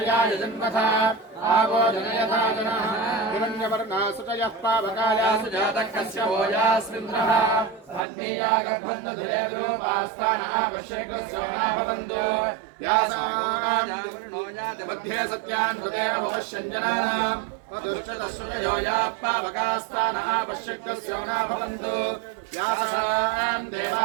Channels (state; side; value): drops out; left; at 8.1 s